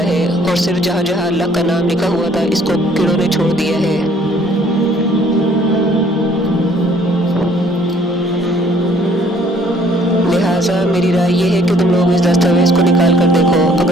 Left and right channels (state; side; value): normal; both; correlation 0.60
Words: है और सिर्फ जहाँ जहाँ अल्लाह का नाम लिखा हुआ था, इसको कीड़ों ने छोड़ दिया है। लिहाजा मेरी राय ये है कि तुम लोग इस दस्तावेज़ को निकाल कर देखो।